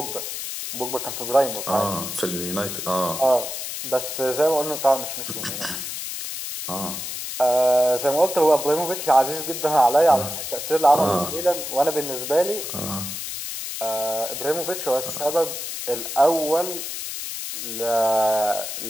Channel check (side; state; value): left; noise; hiss, 6 dB below the sound